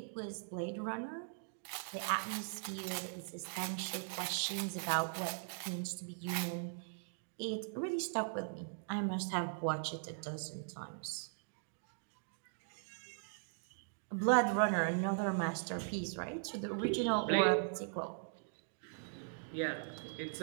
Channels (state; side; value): silent; left; digital silence